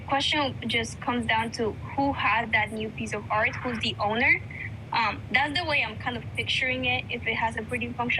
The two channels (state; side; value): identical; both; correlation 1.00